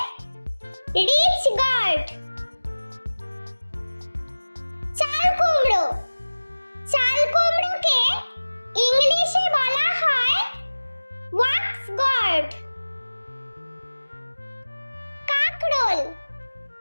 রিচ গার্ড। চাল কুমড়োকে ইংলিশে বলা হয় ওয়াক্স গার্ড।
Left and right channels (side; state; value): both; inverted; correlation -1.00